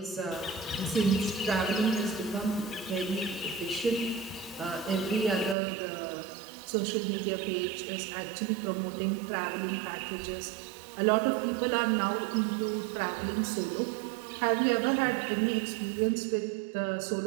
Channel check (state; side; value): drops out; left; at 5.6 s